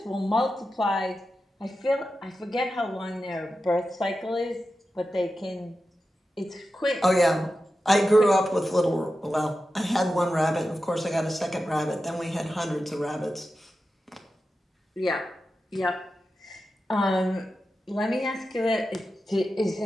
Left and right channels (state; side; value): normal; both; correlation 0.91